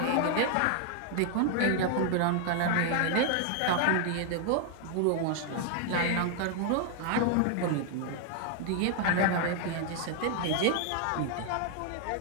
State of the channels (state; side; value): different; both; correlation 0.00